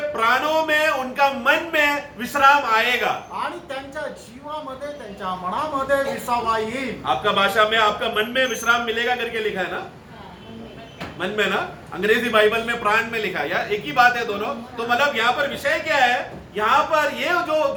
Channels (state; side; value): identical; both; correlation 1.00